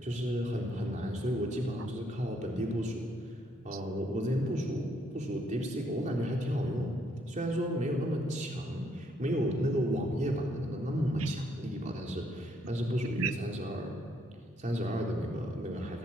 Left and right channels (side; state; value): both; normal; correlation 0.71